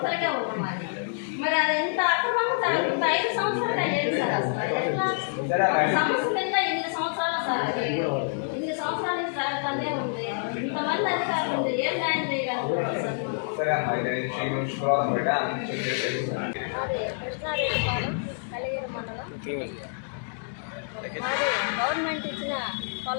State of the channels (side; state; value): right; silent; digital silence